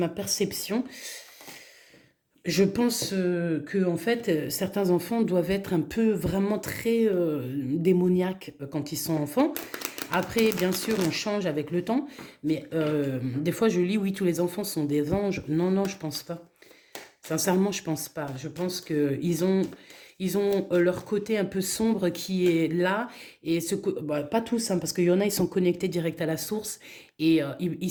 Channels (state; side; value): identical; both; correlation 1.00